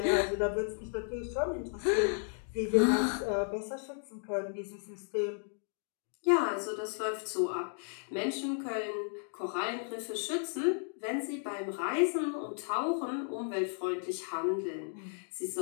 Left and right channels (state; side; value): silent; right; 55 dB below the other